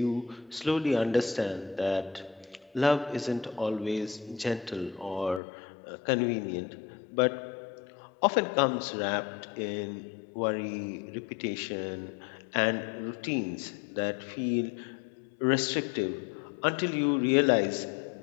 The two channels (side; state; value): right; drops out; at 5.4 s